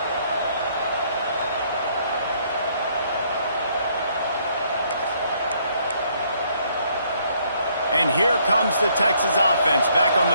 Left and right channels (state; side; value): inverted; both; correlation -0.67